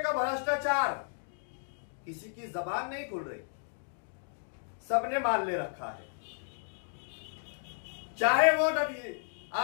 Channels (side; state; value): right; silent; 56 dB below the other